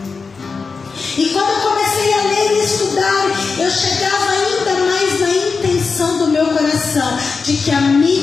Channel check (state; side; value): quieter; right; 4.8 dB